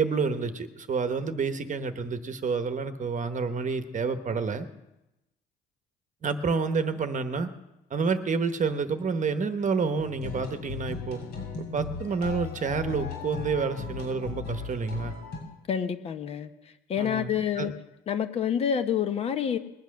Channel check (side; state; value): both; normal; correlation 0.43